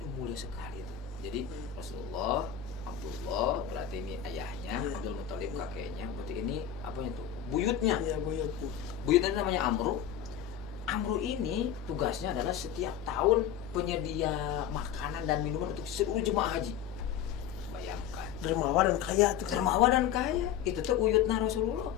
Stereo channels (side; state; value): right; quieter; 9.5 dB